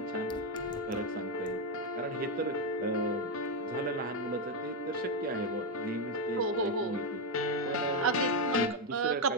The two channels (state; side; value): normal; both; correlation 0.03